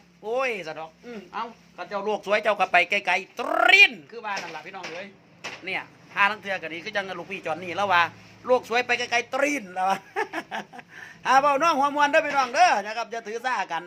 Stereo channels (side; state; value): both; identical; correlation 1.00